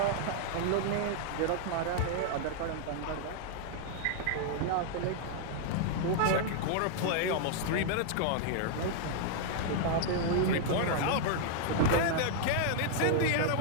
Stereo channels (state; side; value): different; both; correlation 0.00